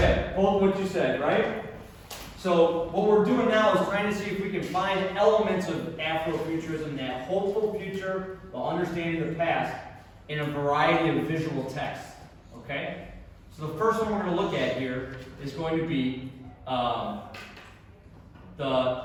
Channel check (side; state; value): both; identical; correlation 1.00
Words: Hold what you said, right? So what we're doing now is trying to see if we can find elements of Afrofuturism, that hopeful future while understanding the past, in a variety of visual texts. Okay? So the first one we're going to look at here is going to be